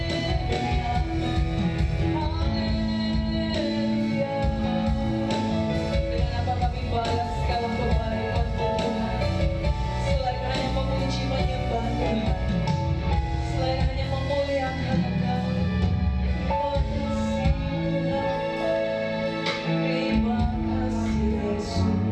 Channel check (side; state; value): both; identical; correlation 1.00